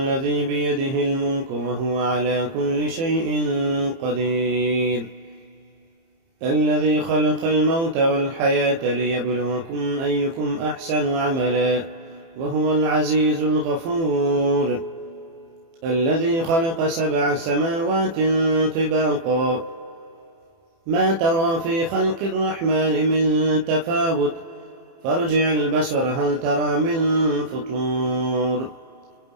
بيده الملك وهو على كل شيء قدير، الذي خلق الموت والحياة ليبلوكم أيكم أحسن عملا، وهو العزيز الغفور، الذي خلق 7 سماوات طباقا، ما ترى في خلق الرحمن من تفاوت، فارجع البصر هل ترى من فطور،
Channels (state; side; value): late; left; 30 ms